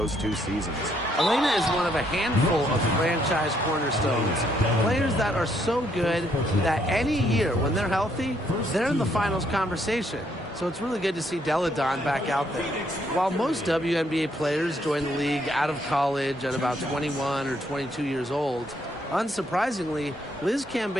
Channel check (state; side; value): normal; both; correlation 0.71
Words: 2 seasons. Elena is one of a handful of franchise cornerstones. Players that are so good that any year when they're healthy, they're in the finals conversation. So it's really good to see Deladon back out there. While most WNBA players join the league out of college at about 21 or 22 years old, unsurprisingly, Liz